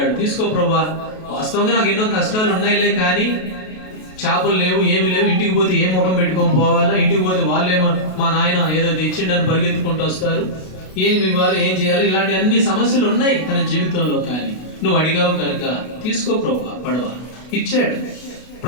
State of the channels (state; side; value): late; right; 32 ms